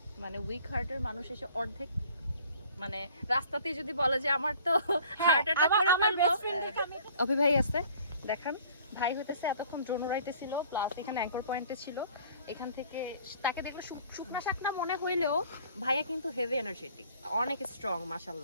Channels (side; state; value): both; inverted; correlation -0.53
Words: মানে উইক হার্টের মানুষ এসে অর্ধেক মানে রাস্তাতে যদি বলে যে আমার তো হার্ট অ্যাটাক করে ফেলবো, অভি ভাই আছে দেখান। ভাই হইতেছে এতক্ষণ ড্রোন উড়াইতেছিল, প্লাস এখানে অ্যাঙ্কর পয়েন্টে ছিল। এখান থেকে তাকে দেখলে শুকনা শাকনা মনে হইলেও ভাইয়া কিন্তু হেভি এনার্জেটিক, অনেক স্ট্রং